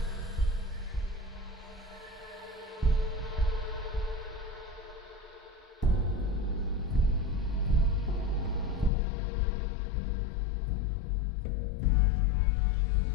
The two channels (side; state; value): right; drops out; at 8.9 s